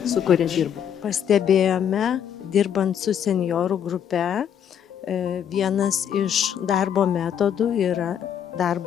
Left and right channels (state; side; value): quieter; right; 8.8 dB